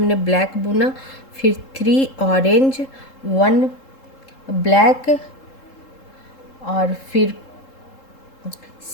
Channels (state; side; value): late; right; 3.7 ms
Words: ब्लैक बुना, फिर 3 ऑरेंज 1 ब्लैक और फिर